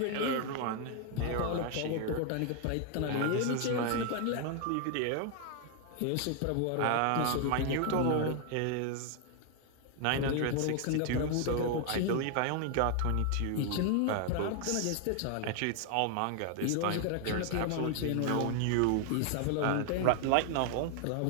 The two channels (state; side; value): different; both; correlation 0.00